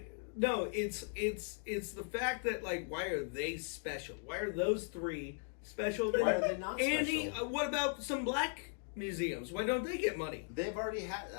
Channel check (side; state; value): right; silent; 52 dB below the other